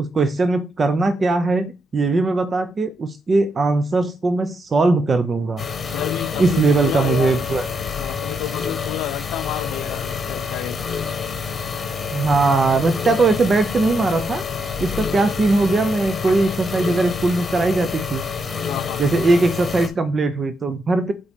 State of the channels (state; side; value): normal; both; correlation 0.81